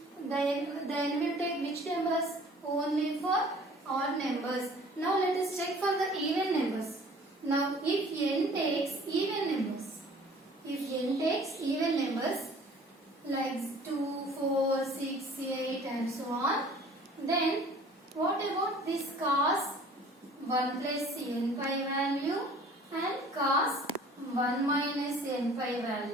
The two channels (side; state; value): both; normal; correlation 0.50